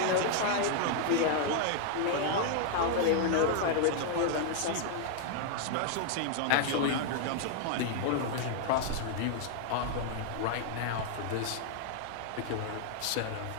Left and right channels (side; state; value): both; different; correlation 0.00